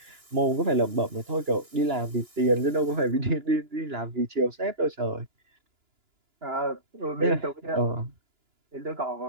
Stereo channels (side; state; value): left; late; 2.9 ms